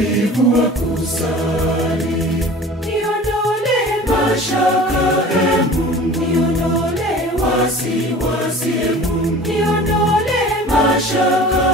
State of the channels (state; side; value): normal; both; correlation 0.42